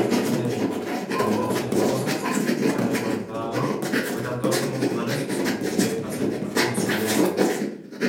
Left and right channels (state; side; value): identical; both; correlation 1.00